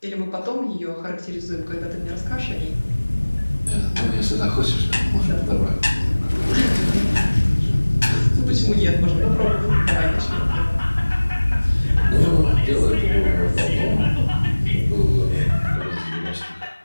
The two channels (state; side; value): inverted; both; correlation -1.00